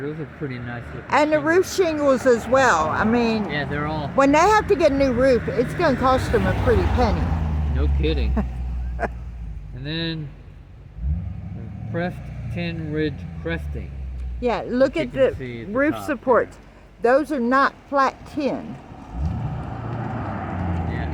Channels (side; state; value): both; identical; correlation 1.00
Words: Those are pretty nice looking. And the shingles. roof shingles as well. I mean, Yeah, they're all. when they have to get a new roof, it's going to cost them a pretty penny. No kidding. And then the pressed tin ridge cresting. Yeah, look You at can the see at the roof top supports. Those are not flat tin.